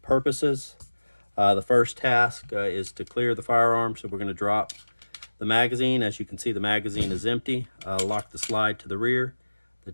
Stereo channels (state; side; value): inverted; both; correlation -1.00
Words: The first task is to clear the firearm, so we're going to drop the magazine. As you can see, the magazine is empty. Lock the slide to the rear. The